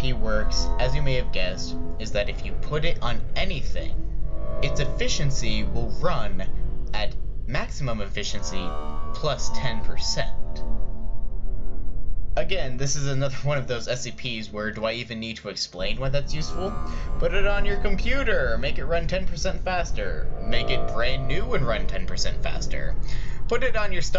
works, as you may have guessed, is that if you put it on anything, its efficiency will run at maximum efficiency plus 10%. Again, this is another one of those SCPs where do I even need to explain why that's useful? Put it on your computer, make it run 10% faster. Make it brand new and run 10% faster. Put it on your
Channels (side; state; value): both; identical; correlation 1.00